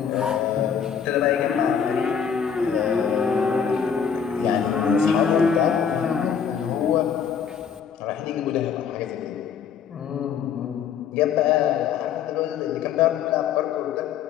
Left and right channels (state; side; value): quieter; right; 7.4 dB